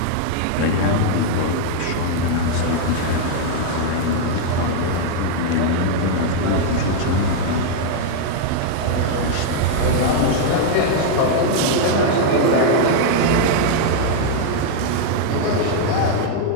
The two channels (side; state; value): both; different; correlation 0.00